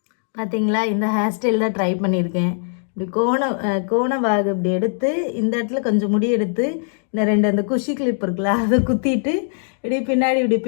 பார்த்தீங்களா, இந்த ஹேர் ஸ்டைல் தான் ட்ரை பண்ணியிருக்கேன். இப்படி கோண வாகு இப்படி எடுத்து இந்த இடத்துல கொஞ்சம் முடி எடுத்து இந்த ரெண்டு அந்த குஷி கிளிப் இருக்குல்ல அதை குத்திட்டு இப்படி பின்னாடி இப்படி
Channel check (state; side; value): silent; right; digital silence